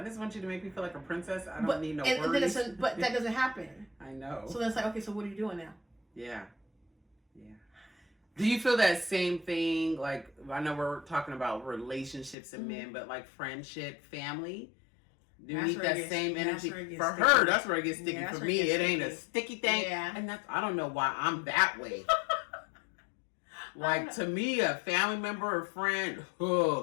just want you to make me feel like a princess. I don't need no worries. But that doesn't happen. I know. So then it's like, okay, so what are you doing now? Yeah. Yeah. Do you feel that same thing? Like, I know we're talking about relationships and men, but like friendship, family? Do you need that same energy? For her, that's where it gets sticky. For me, it ain't a sticky thing. Yeah. And I don't know why I'm that way. Like, to me, a family member or friend,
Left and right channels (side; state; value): right; drops out; at 12.4 s